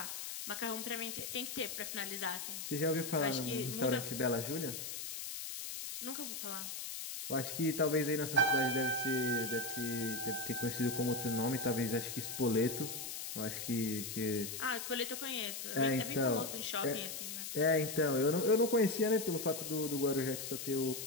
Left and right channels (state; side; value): noise; left; hiss, 6 dB below the sound